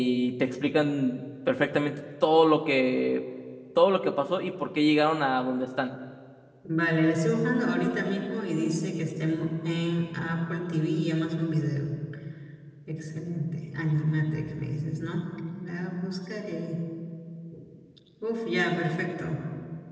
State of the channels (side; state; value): both; identical; correlation 1.00